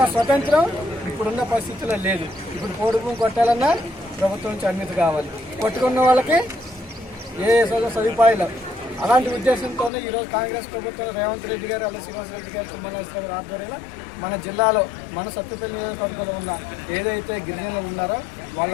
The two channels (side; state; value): right; drops out; at 9.9 s